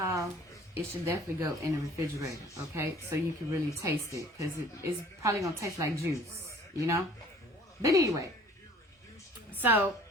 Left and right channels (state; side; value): normal; both; correlation 0.52